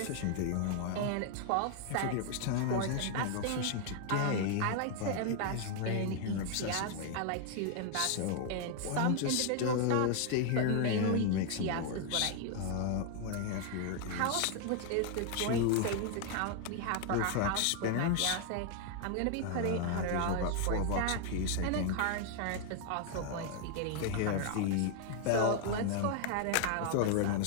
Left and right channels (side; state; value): both; different; correlation 0.00